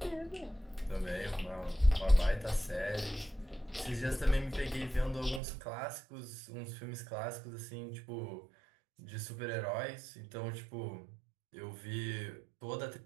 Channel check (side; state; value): left; drops out; at 5.4 s